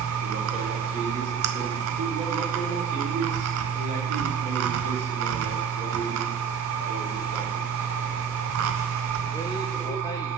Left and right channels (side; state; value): left; quieter; 6.9 dB